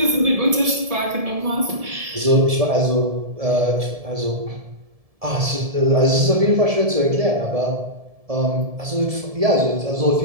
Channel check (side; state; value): left; late; 1.7 ms